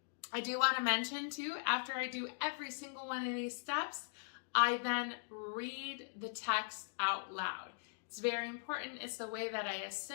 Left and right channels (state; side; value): silent; right; digital silence